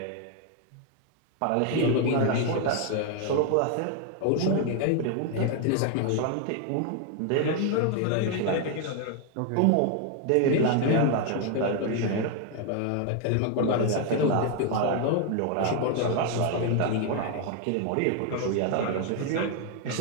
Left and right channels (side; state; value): both; different; correlation 0.00